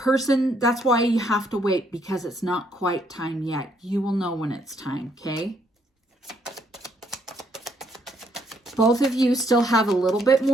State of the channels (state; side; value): normal; both; correlation 0.71